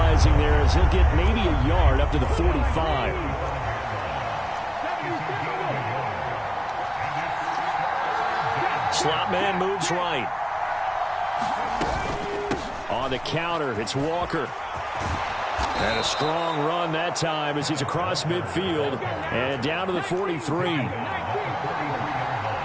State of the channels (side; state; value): both; identical; correlation 1.00